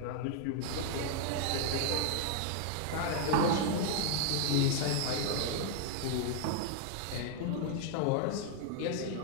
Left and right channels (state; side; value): different; both; correlation 0.00